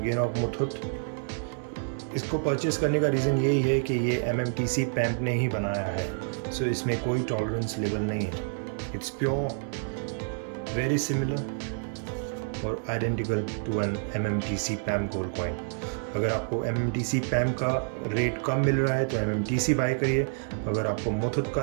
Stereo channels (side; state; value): left; silent; digital silence